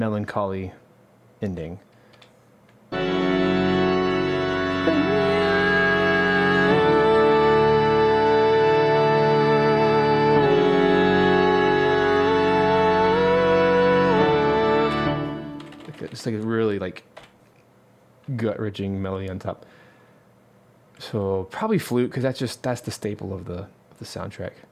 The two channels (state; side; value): identical; both; correlation 1.00